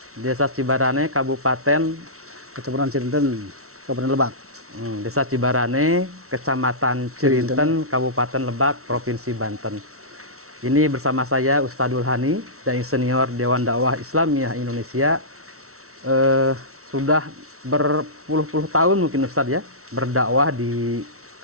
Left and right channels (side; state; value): left; late; 0.63 ms